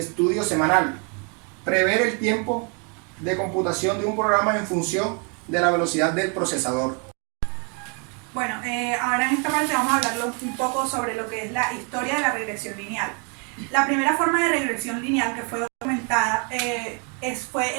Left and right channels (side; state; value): left; quieter; 36.9 dB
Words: estudio semanal. Prever el tiempo de computación de un programa en función de la velocidad del procesador. Bueno, ahora en esta parte vamos a hablar un poco sobre lo que es la historia de la regresión lineal. La primera forma de regresión lineal que fue documentada fue